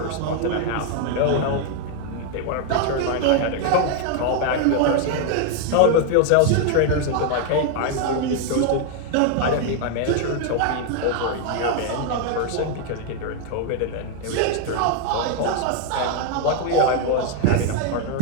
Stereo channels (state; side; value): different; both; correlation 0.00